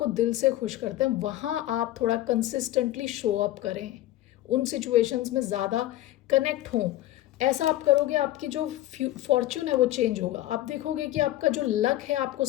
दिल से खुश करते हैं, वहाँ आप थोड़ा कंसिस्टेंटली शो अप करें, उन सिचुएशंस में ज़्यादा कनेक्ट हों। ऐसा आप करोगे, आपकी जो फॉर्च्यून है वो चेंज होगा, आप देखोगे कि आपका जो लक है आपको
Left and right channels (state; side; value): quieter; right; 14.9 dB